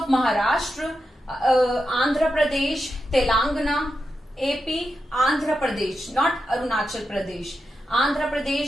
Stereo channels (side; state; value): both; normal; correlation 0.88